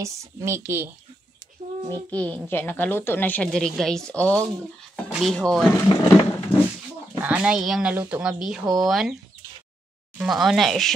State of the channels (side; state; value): both; normal; correlation 0.82